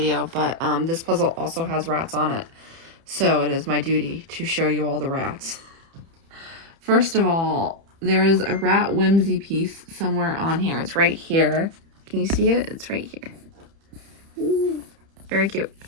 but this puzzle also has rats on it. So it is my duty to show you all the rats. First of all, there is a rat whimsy piece somewhere on here. It's right here. Can you see it? It's right here. Ooh, very cute.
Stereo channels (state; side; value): late; left; 30 ms